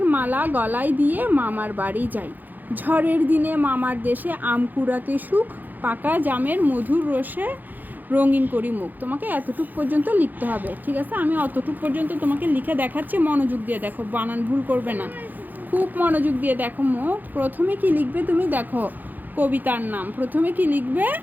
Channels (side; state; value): left; late; 0.085 ms